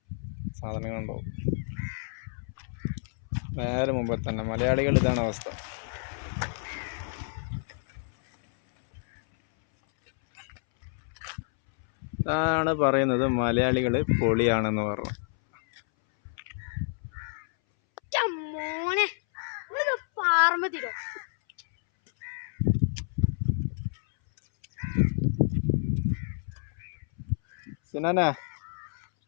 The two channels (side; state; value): right; silent; 59 dB below the other